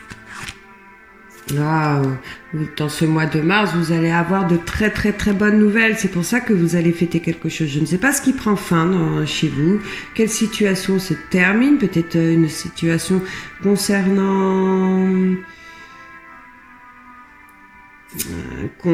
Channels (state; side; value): identical; both; correlation 1.00